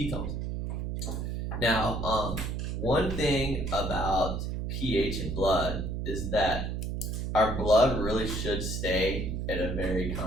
Now, one thing about pH in blood is that our blood really should stay at a very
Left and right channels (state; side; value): noise; right; hum, 3 dB below the sound